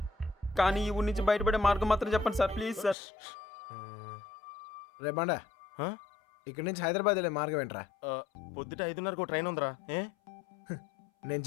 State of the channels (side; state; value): right; drops out; at 3.0 s